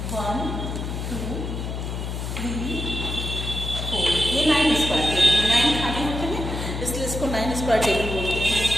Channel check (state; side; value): noise; left; hum, 4 dB below the sound